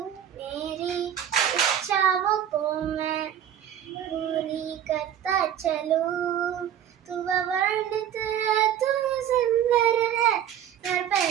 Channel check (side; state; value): left; quieter; 10.1 dB